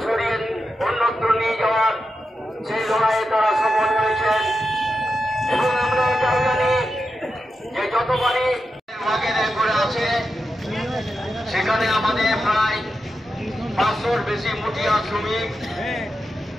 সরিয়ে অন্যত্র নিয়ে যাওয়ার সেই লড়াইয়ে তারা সফল হয়েছেন। এবং আমরা এটাও জানি যে যতবারই ওয়াগনে করে আছে সেখানে আমাদের প্রায় 500-র বেশি মুঠিয়া শ্রমিক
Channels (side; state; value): both; normal; correlation 0.88